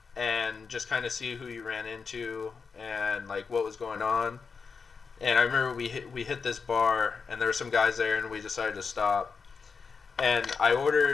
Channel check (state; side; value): quieter; right; 5.3 dB